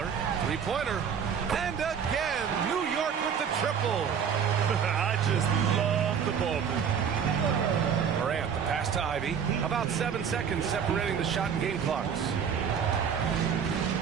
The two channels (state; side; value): quieter; left; 7.4 dB